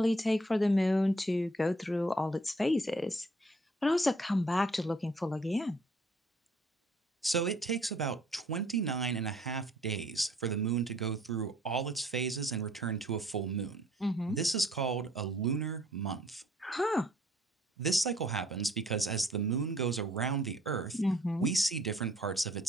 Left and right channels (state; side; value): normal; both; correlation 0.60